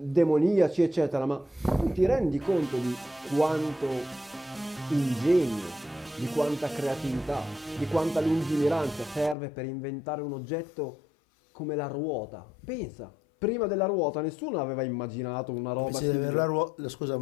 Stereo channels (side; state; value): right; drops out; at 9.3 s